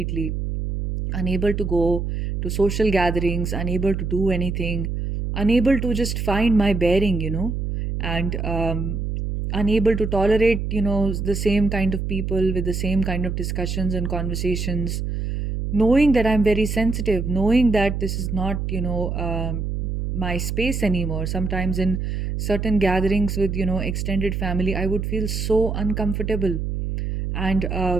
unable to go to social gatherings, unable to do anything, unable to just find my bearing, and unable to tolerate, the same kind of people with the same kind of discussions and conversations, knowing that I'm very sensitive, knowing that this is not, my space anymore. Sometimes in certain gatherings with, extended family, I would feel so uncomfortable. And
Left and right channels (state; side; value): noise; right; hum, 2 dB below the sound